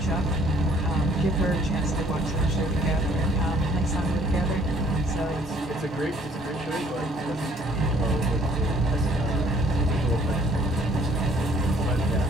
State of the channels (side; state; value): both; normal; correlation 0.61